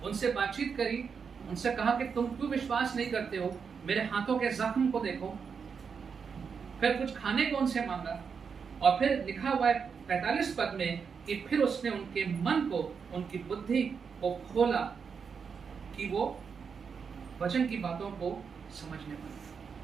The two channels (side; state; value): left; quieter; 6.1 dB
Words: उनसे बातचीत करी, उनसे कहा कि तुम क्यों विश्वास नहीं करते हो, मेरे हाथों के जख्म को देखो. फिर कुछ खाने को उनसे मांगा, और फिर लिखा हुआ है 45 पद में कि फिर उसने उनके मन को, उनकी बुद्धि को खोला कि वो वचन की बातों को समझने पाए.